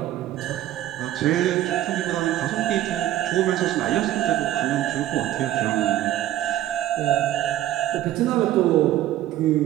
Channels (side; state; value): left; quieter; 13.4 dB